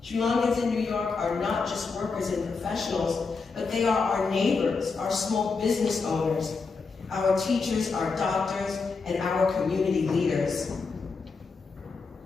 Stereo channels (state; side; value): quieter; right; 4.6 dB